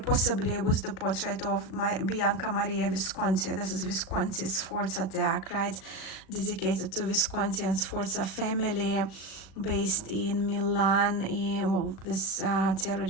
with the portrait of Bianca Maria Visconti. This is Visconti's Sforza deck, right, dedicated to Visconti and Sforza family, based in Milan. Well, this tarot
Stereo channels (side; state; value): right; late; 37 ms